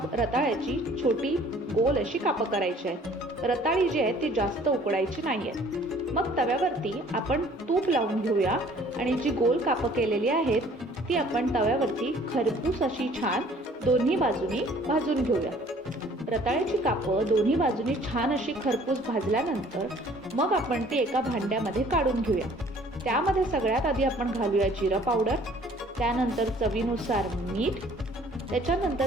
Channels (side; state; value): both; normal; correlation 0.55